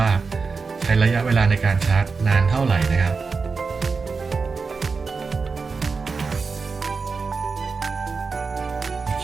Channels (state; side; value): quieter; left; 4.7 dB